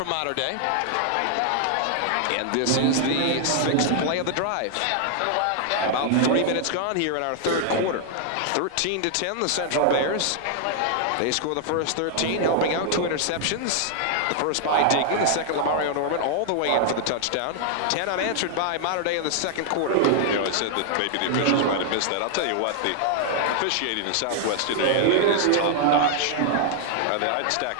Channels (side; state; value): both; different; correlation 0.00